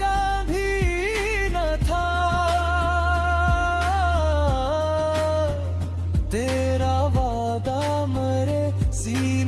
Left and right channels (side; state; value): both; identical; correlation 1.00